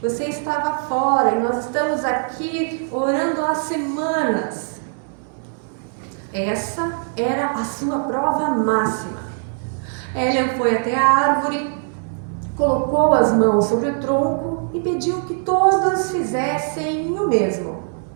Você estava fora e nós estamos aqui orando há semanas. Essa era a sua prova máxima. Hélia foi até a árvore, colocou as mãos sobre o tronco e pediu que todos fizessem o mesmo.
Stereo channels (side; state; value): left; silent; 65 dB below the other